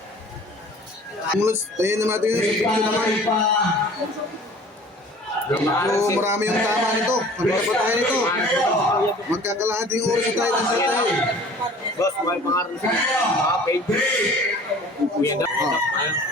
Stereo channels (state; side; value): normal; both; correlation 0.47